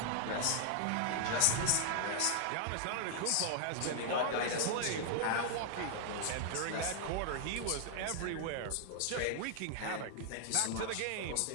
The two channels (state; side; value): different; both; correlation -0.01